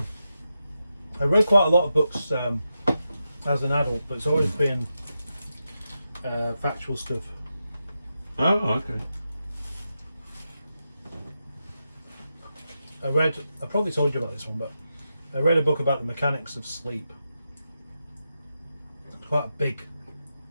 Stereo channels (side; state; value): both; inverted; correlation -0.88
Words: read quite a lot of books as an adult, but it's always been factual stuff. Oh, okay. I probably told you about this one, but I read a book about the mechanics of sleep. It's quite a big